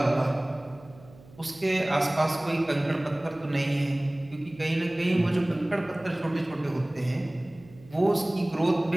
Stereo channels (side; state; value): right; noise; hum, 23 dB below the sound